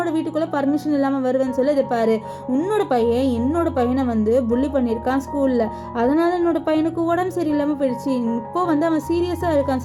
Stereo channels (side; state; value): both; identical; correlation 1.00